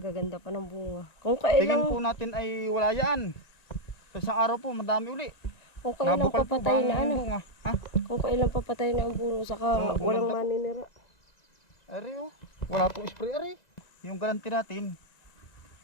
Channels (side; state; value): right; late; 1.9 ms